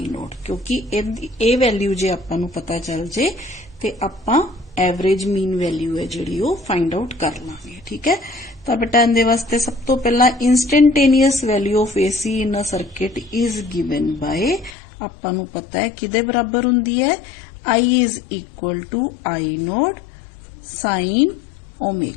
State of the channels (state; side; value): drops out; right; at 14.7 s